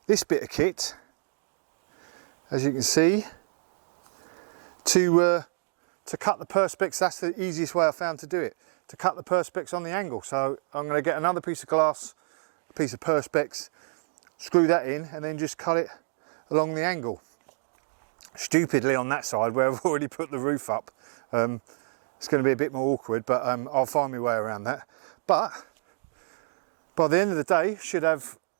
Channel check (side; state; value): left; silent; digital silence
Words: this bit of kit, as you can see, to cut the Perspex. That's the easiest way I found to do it, to cut the Perspex on the angle. So I'm going to get another piece of glass, a piece of Perspex, screw that in, and then just cut it along the angle. Stupidly on that side where I've already put the roof up. It's going to be a bit more awkward, but I'll find my way around that. But by the end of the day, should have